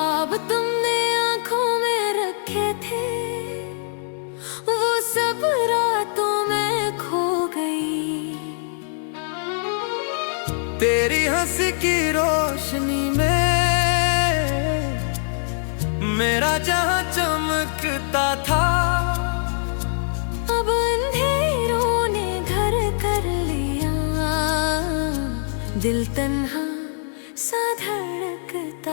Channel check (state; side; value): silent; right; digital silence